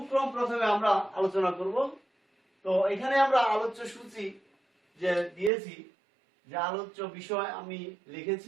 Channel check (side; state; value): left; drops out; at 5.5 s